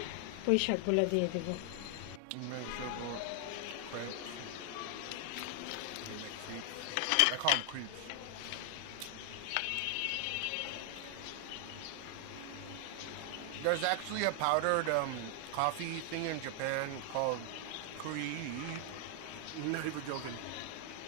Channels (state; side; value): different; both; correlation 0.00